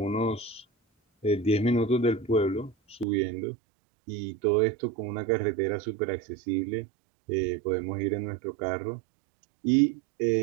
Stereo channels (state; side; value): drops out; left; at 3.1 s